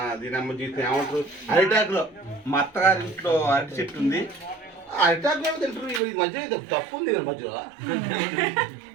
దీని జీతం ఏమంటారు అరిటాకులో. మా అత్తగారింట్లో అరటి చెట్టు ఉంది, అరిటాకులో తింటారు. ఇది మంచిగా తప్పు ఉంది మధ్యలో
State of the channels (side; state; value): left; drops out; at 6.0 s